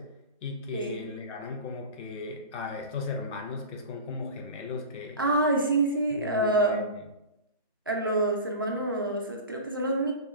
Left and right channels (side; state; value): both; inverted; correlation -0.31